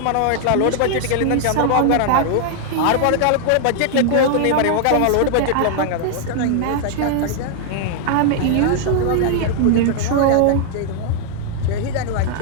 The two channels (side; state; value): both; different; correlation 0.00